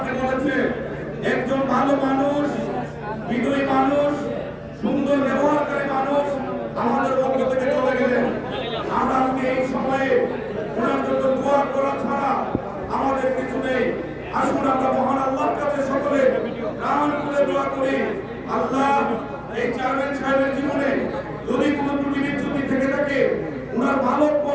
বলেছে একজন ভালো মানুষ, বিনয়ী মানুষ, সুন্দর ব্যবহারকারী মানুষ আমাদের পক্ষ থেকে চলে গেলেন। আমরা আজকে এই সময়ে ওনার জন্য দোয়া করা ছাড়া আমাদের কিছু নেই। আসুন আমরা মহান আল্লাহর কাছে সকলে প্রাণ খুলে দোয়া করি, আল্লাহ এই চেয়ারম্যান সাহেবের জীবনে যদি কোনো ত্রুটি বিচ্যুতি থেকে থাকে, ওনার ভালো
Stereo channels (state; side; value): identical; both; correlation 1.00